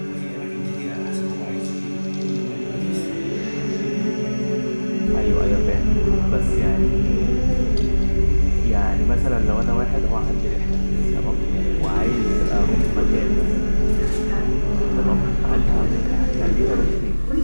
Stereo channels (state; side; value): inverted; both; correlation -1.00